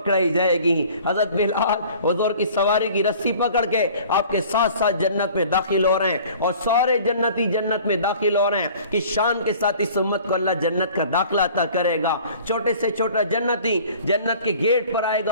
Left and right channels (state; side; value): inverted; both; correlation -0.48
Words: جائے گی. حضرت بلال حضور کی سواری کی رسی پکڑ کے آپ کے ساتھ ساتھ جنت میں داخل ہو رہے ہیں, اور سارے جنتی جنت میں داخل ہو رہے ہیں. کس شان کے ساتھ اس امت کو اللہ جنت کا داخلہ عطا کرے گا. چھوٹے سے چھوٹا جنتی جنت کے گیٹ پر آئے